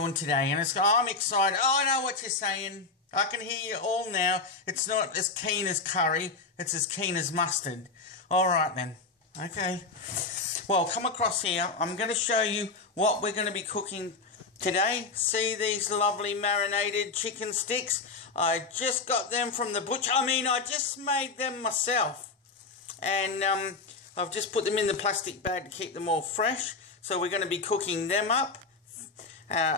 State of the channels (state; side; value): quieter; right; 4.1 dB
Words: today, and I'm excited. Oh, I know what you're saying. I can hear you all now. It's not as keen as curry. It's as keen as mustard. All right then. Okay. Well, come across here. I'm going to show you what we're going to be cooking today. See these lovely marinated chicken sticks? I just got them from the butcher. I just made them myself. And I've just put them in the plastic bag to keep them all fresh. So we're going to be cooking them up